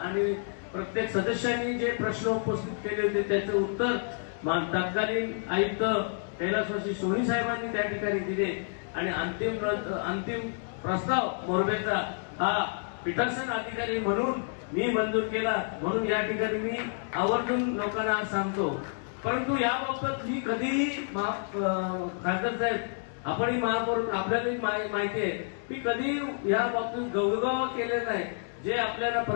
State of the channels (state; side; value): silent; right; digital silence